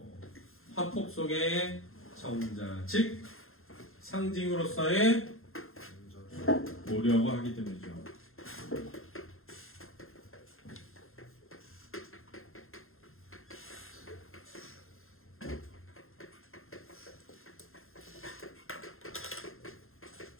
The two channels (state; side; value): late; right; 0.61 ms